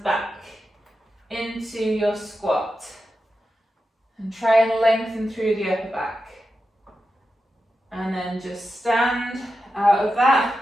into your squat. And try and lengthen through the upper back. And then just stand out of that.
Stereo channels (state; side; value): normal; both; correlation 0.90